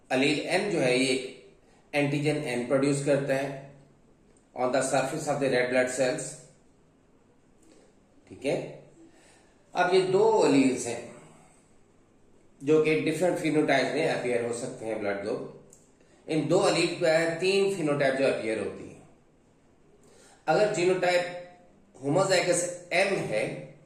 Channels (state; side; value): identical; both; correlation 1.00